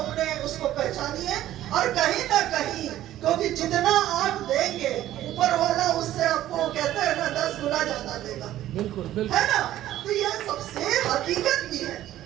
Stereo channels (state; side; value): quieter; left; 13.4 dB